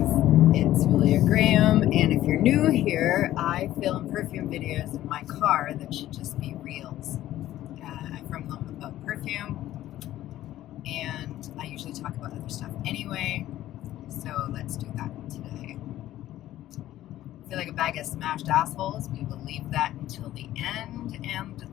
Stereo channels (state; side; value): quieter; right; 13.9 dB